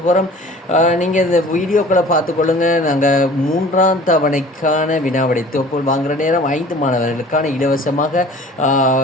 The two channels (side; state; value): both; normal; correlation 0.46